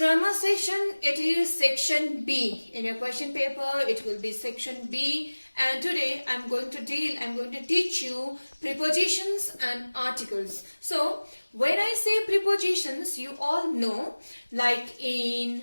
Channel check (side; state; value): both; inverted; correlation -1.00